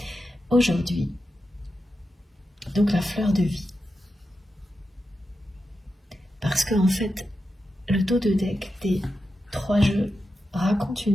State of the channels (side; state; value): both; normal; correlation 0.89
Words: aujourd'hui. Donc la fleur de vie. Parce qu'en fait, le dos de deck des 3 jeux raconte